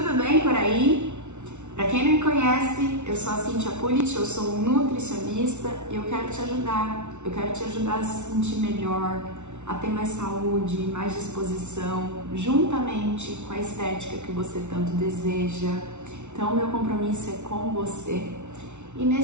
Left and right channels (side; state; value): left; late; 0.83 ms